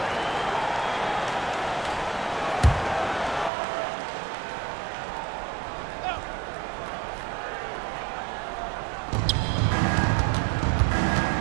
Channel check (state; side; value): drops out; left; at 3.5 s